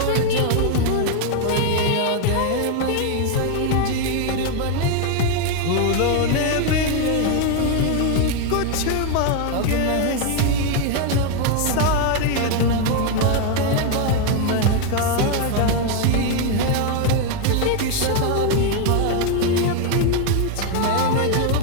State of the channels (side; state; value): both; different; correlation 0.01